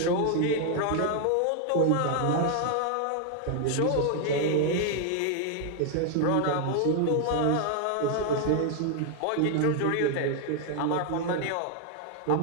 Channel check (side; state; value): both; different; correlation 0.00